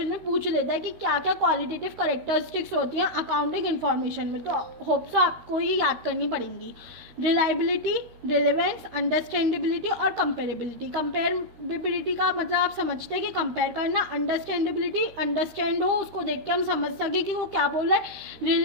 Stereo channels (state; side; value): late; left; 13 ms